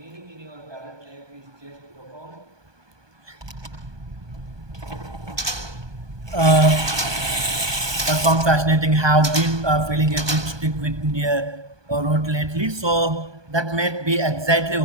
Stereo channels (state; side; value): late; left; 1.2 ms